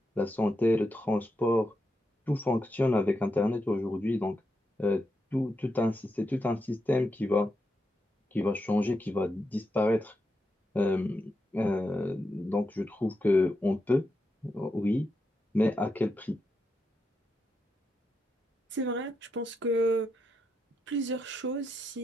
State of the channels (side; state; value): both; normal; correlation 0.85